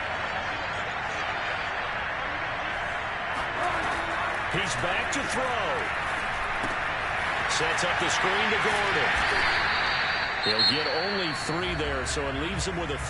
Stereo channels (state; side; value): identical; both; correlation 1.00